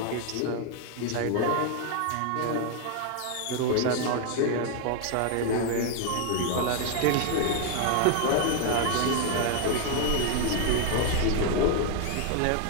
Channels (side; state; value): both; different; correlation 0.00